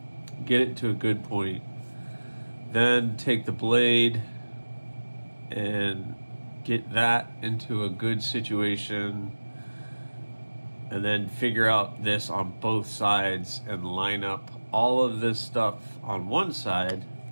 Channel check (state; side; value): inverted; both; correlation -1.00